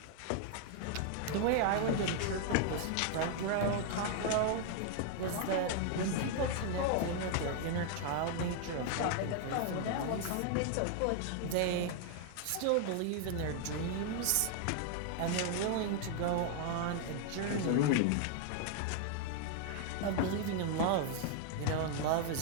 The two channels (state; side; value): different; both; correlation 0.00